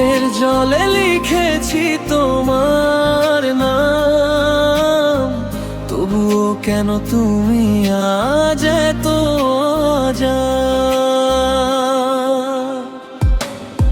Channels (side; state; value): both; identical; correlation 1.00